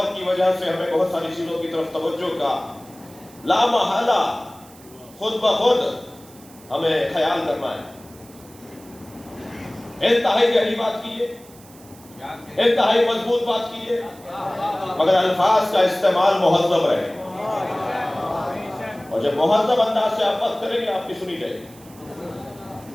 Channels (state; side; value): noise; right; hiss, 23 dB below the sound